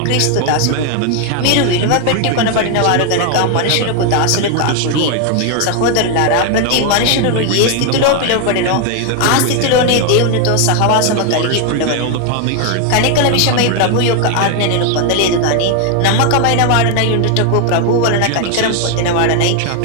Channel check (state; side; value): different; both; correlation 0.01